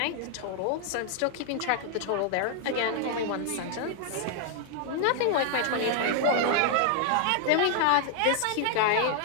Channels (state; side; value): different; both; correlation 0.00